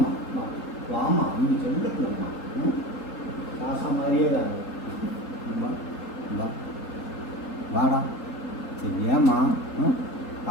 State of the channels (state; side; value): late; right; 4.0 ms